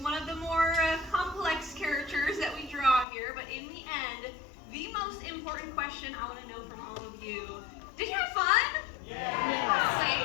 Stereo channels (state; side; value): drops out; right; at 3.1 s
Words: of the more complex characters that we draw here, but in the end, the most important question I want to know from all of you, did you have fun?